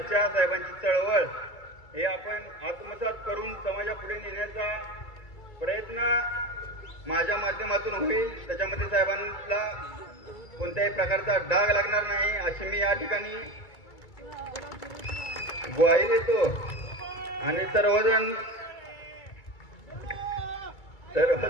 साहेबांची चळवळ हे आपण आत्मसात करून समाजापुढे नेण्याचा प्रयत्न माझ्या माध्यमातून होईल. त्याच्यामध्ये साहेबांना कोणत्याही प्रकारचा डाग लागणार नाही अशी मी या ठिकाणी ग्वाही देतो. आणि सर्वजण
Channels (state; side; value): late; right; 2.3 ms